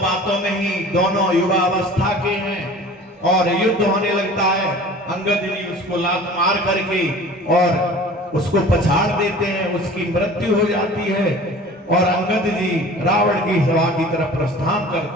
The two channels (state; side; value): normal; both; correlation 0.43